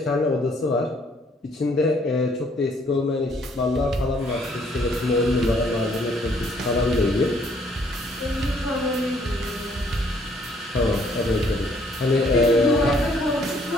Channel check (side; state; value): both; normal; correlation 0.64